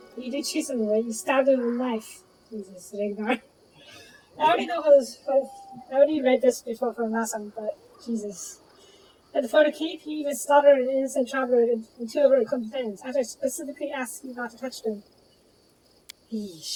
You did chase him away. You stabbed him with a knife. Jesus, Ragnar. I already read this before from last time, but Jesus. And for the cape, you even slaughtered an innocent traveler and two of her companions, after I specifically asked you not to touch them.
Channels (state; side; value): identical; both; correlation 1.00